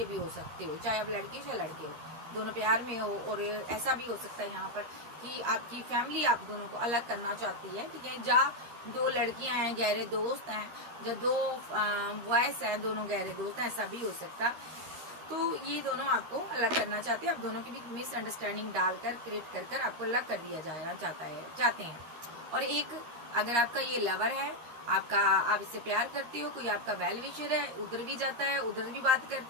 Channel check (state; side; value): late; left; 13 ms